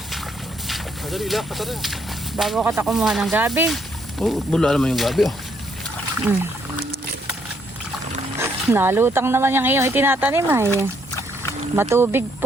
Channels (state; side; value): normal; both; correlation 0.71